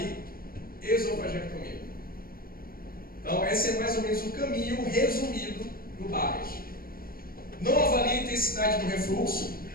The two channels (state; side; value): late; right; 0.42 ms